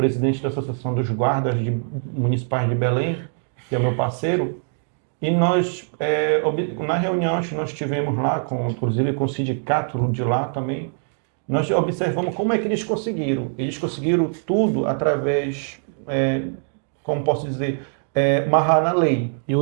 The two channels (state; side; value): silent; left; 64 dB below the other